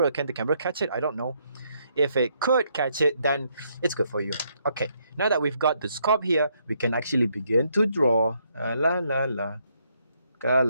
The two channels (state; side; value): inverted; both; correlation -0.73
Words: Can the camera catch it? I don't know. If it could catch it, then it's good for you. Okay, now that we've got the scope here, we can actually begin to draw. La la la, ka